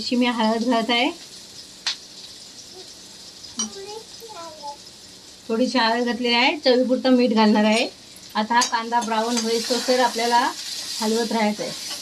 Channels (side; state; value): both; identical; correlation 1.00